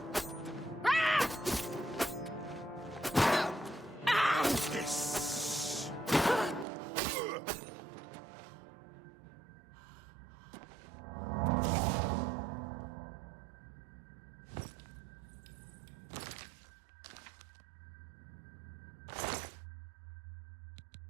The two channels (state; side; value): drops out; left; at 6.7 s